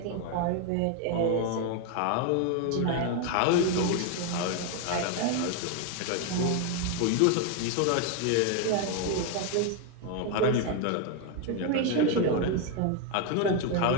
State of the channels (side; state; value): both; different; correlation 0.01